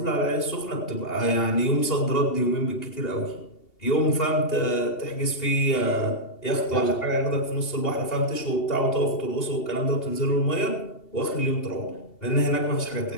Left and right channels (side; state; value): right; late; 2.8 ms